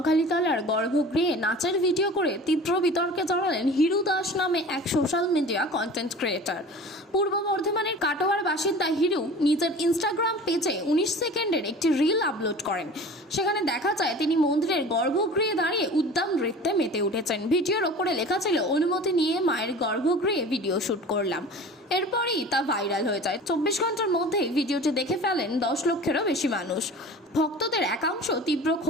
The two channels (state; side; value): normal; both; correlation 0.39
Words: গর্ভগৃহে নাচের ভিডিও করে তীব্র বিতর্কে জড়ালেন হিরু দাস নামে এক সোশ্যাল মিডিয়া কন্টেন্ট ক্রিয়েটর। পূর্ব বর্ধমানের কাটোয়ার বাসিন্দা হিরু নিজের ইনস্টাগ্রাম পেজে 19 সেকেন্ডের একটি রিল আপলোড করেন। সেখানে দেখা যায় তিনি মন্দিরের গর্ভগৃহে দাঁড়িয়ে উদ্দাম নৃত্যে মেতে উঠেছেন। ভিডিওর ওপরে লেখা ছিল, অনুমতি নিয়ে মায়ের গর্ভগৃহে ভিডিও শুট করলাম। এরপরই তা ভাইরাল হয়ে যায়। 24 ঘন্টার মধ্যেই ভিডিওটি দেখে ফেলেন 10 লক্ষেরও বেশি মানুষ। ভক্তদের একাংশ তীব্র